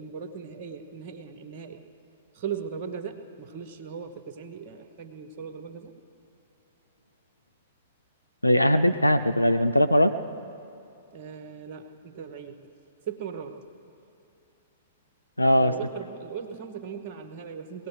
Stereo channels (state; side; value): inverted; both; correlation -0.86